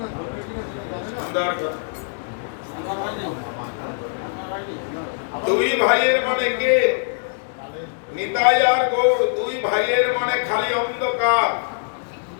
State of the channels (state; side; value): silent; right; digital silence